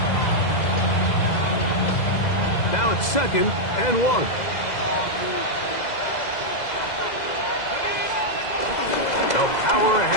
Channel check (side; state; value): right; late; 2.0 ms